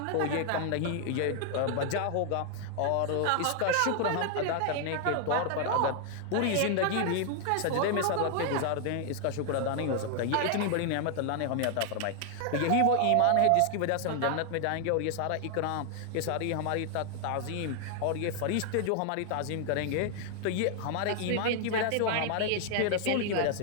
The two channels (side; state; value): both; different; correlation 0.00